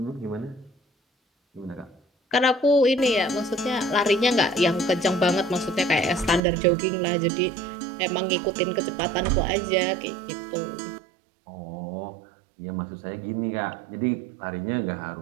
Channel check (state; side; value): drops out; left; at 6.4 s